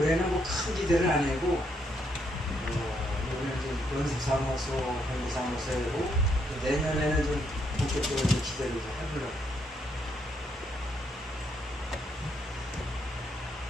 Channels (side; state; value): both; normal; correlation 0.75